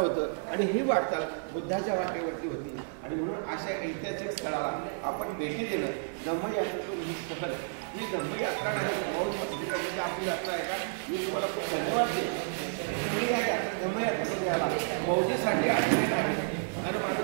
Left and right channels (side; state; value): left; silent; digital silence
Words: आणि ही वाटचाल बुद्धाच्या वाटेवरती होती. आणि म्हणून अशा ऐतिहासिक स्थळाला आपण भेटी देणं, धम्मयात्रेतून ही सहल, ही धम्मयात्रा नाही, मौज मस्ती करण्याची आपली यात्रा आहे का? मी तुम्हाला खूप धन्यवाद देतो. तुम्ही या धम्मयात्रेमध्ये आला, मौजेसाठी आलेले नाही. आणि माझं